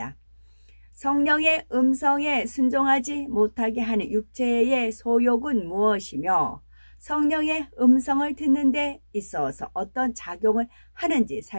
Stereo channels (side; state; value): both; inverted; correlation -1.00